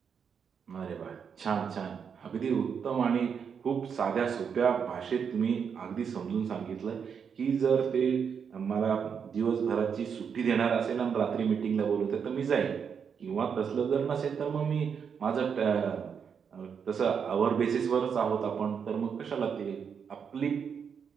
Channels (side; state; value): left; quieter; 6.9 dB